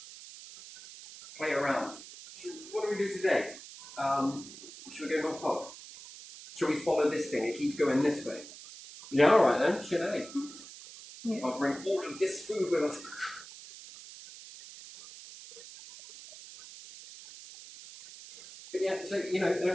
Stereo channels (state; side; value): noise; right; hiss, 15 dB below the sound